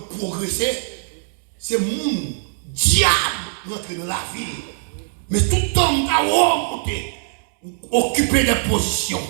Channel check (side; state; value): left; silent; 65 dB below the other